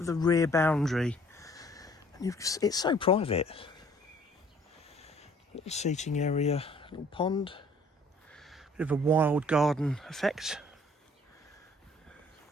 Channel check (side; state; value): both; normal; correlation 0.57